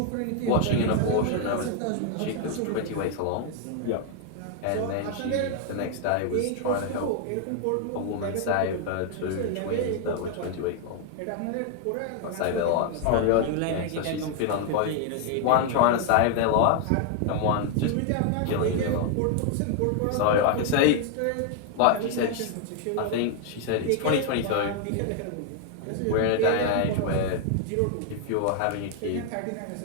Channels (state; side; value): different; both; correlation 0.00